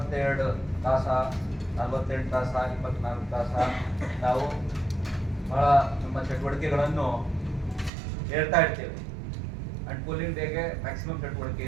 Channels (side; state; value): left; drops out; at 7.9 s